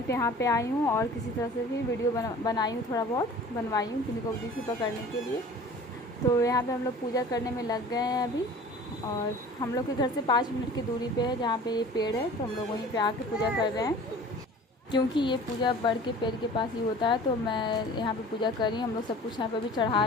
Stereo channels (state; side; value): normal; both; correlation 0.44